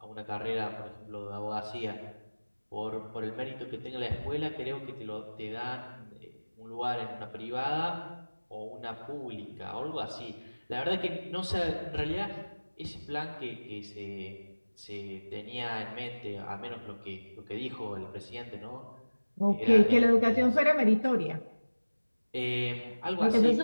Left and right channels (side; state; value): both; inverted; correlation -1.00